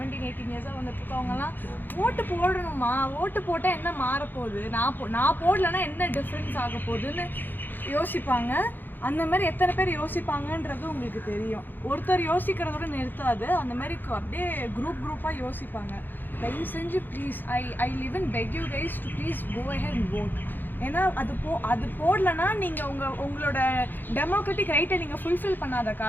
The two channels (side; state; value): right; late; 0.091 ms